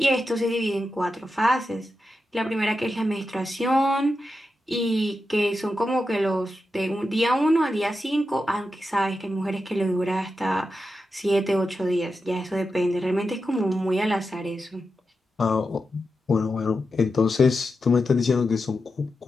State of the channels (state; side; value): normal; both; correlation 0.89